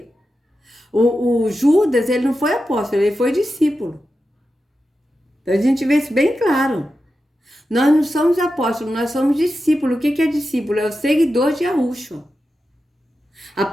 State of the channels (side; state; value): both; normal; correlation 0.90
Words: O Judas, ele não foi apóstolo, ele foi discípulo. Então a gente vê isso bem claro. Nós não somos apóstolos, nós somos discípulos. O que é discípulo? É o seguidor de Yahusha.